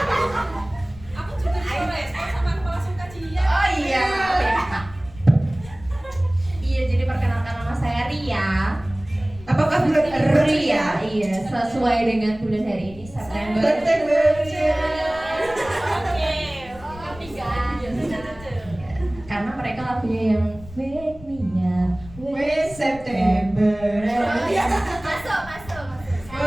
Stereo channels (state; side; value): noise; left; rumble, 18 dB below the sound